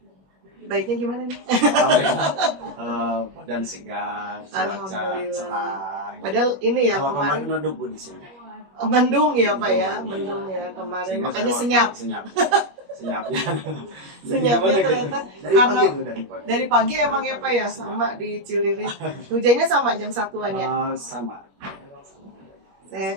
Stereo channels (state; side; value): late; left; 21 ms